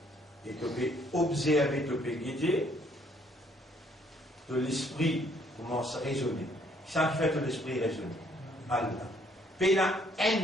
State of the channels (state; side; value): normal; both; correlation 0.66